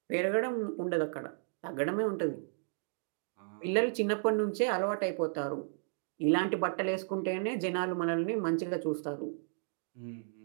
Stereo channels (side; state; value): left; silent; digital silence